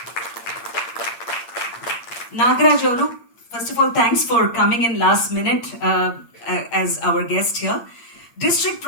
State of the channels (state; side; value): late; right; 8.7 ms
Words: Nagaraj, first of all, thanks for coming in last minute as our guest here. District